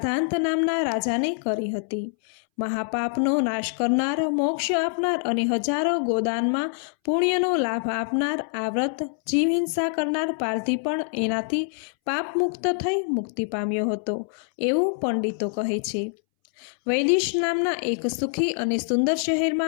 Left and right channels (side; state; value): right; silent; 62 dB below the other